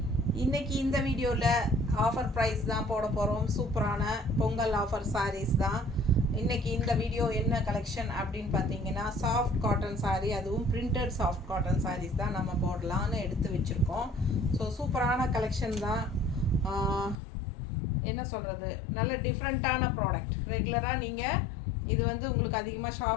இன்றைக்கி இந்த வீடியோவில் ஆஃபர் ப்ரைஸ் தான் போட போகிறோம். சூப்பரான பொங்கல் ஆஃபர் சாரீஸ் தான். இன்றைக்கி இந்த வீடியோ என்ன கலெக்ஷன் அப்படின்னு பார்த்தீங்கன்னா, சாஃப்ட் காட்டன் சாரீ, அதுவும் பிரிண்டட் சாஃப்ட் காட்டன் சாரீஸ் தான் நம்ம போடலான்னு எடுத்து வச்சுருக்கோம். ஸோ சூப்பரான கலெக்ஷன் தான். என்ன சொல்கிறது, நல்ல டிஃப்ரெண்ட்டான ப்ராடக்ட். ரெகுலராக நீங்கள் இது வந்து உங்களுக்கு அதிகமாக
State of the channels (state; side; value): drops out; right; at 17.2 s